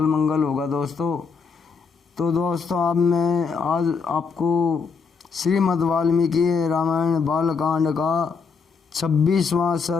मंगल होगा दोस्तों। तो दोस्तों मैं आज आपको श्रीमद् वाल्मीकि रामायण बालकांड का 26वां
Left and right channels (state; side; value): quieter; right; 5.3 dB